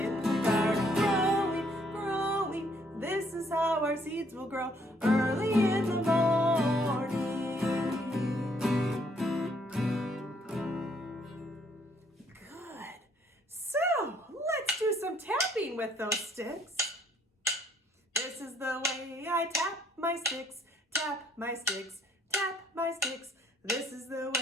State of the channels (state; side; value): normal; both; correlation 0.66